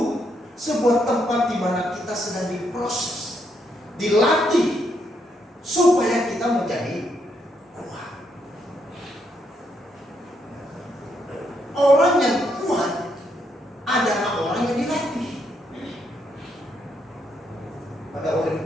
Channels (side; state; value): both; normal; correlation 0.76